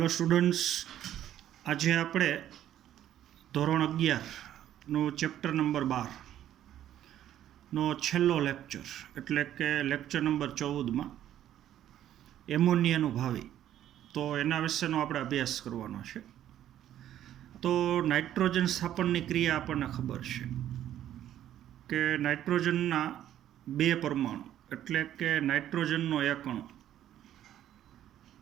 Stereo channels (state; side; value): quieter; left; 11.6 dB